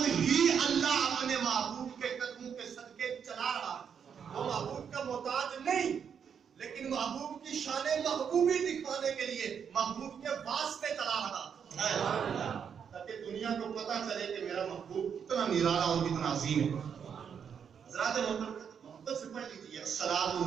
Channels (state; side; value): quieter; left; 7.4 dB